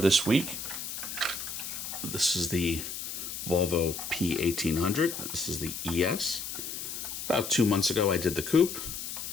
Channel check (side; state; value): left; noise; hiss, 6 dB below the sound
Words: week. This is the Volvo P1800. This is the ES. About 2 months ago I did the coupe.